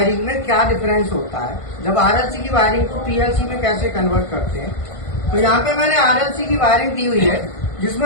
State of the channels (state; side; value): late; right; 1.5 ms